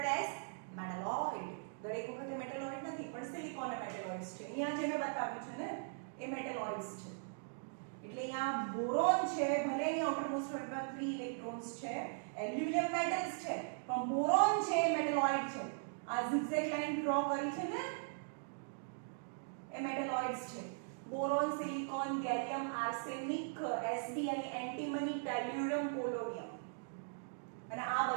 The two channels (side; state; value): left; silent; digital silence